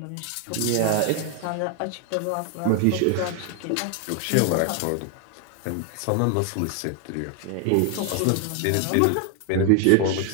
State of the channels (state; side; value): different; both; correlation 0.00